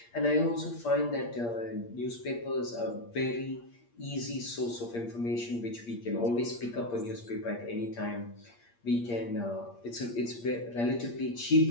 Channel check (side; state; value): right; late; 8.6 ms